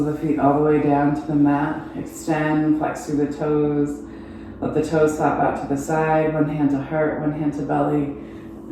the feet all the way down to the mat. Extend, flex through the toes. Let the toes flap out to the side. One hand to heart, one hand to belly.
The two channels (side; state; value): both; identical; correlation 1.00